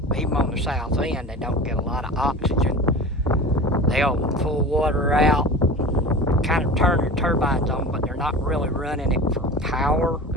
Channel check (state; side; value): normal; both; correlation 0.34